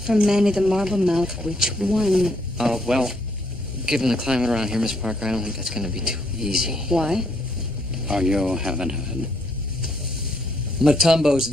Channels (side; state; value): both; normal; correlation 0.72